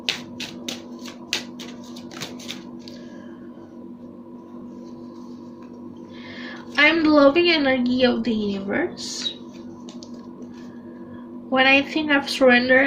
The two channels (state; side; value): identical; both; correlation 1.00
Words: I'm the loving energy of the universe. When I think I've